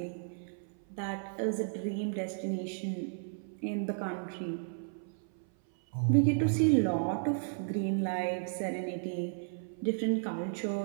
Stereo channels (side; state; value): left; silent; 55 dB below the other